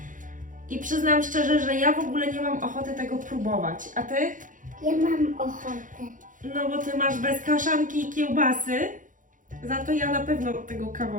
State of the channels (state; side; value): late; left; 0.38 ms